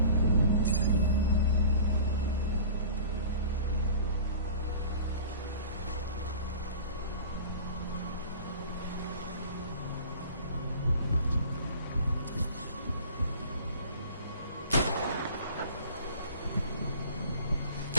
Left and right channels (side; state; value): both; inverted; correlation -0.42